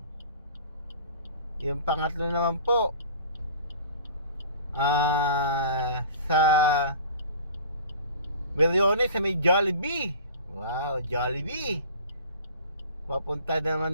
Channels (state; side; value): inverted; both; correlation -0.42